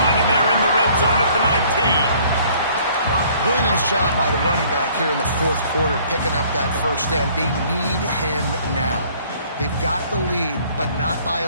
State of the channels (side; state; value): both; inverted; correlation -0.57